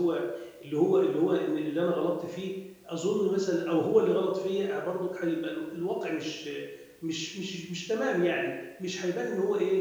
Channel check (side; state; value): both; identical; correlation 1.00